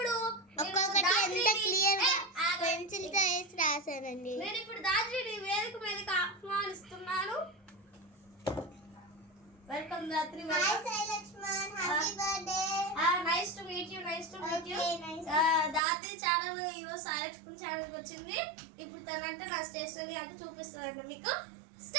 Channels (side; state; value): left; drops out; at 15.8 s